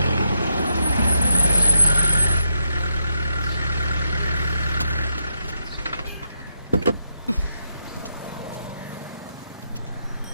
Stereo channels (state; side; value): inverted; both; correlation -0.79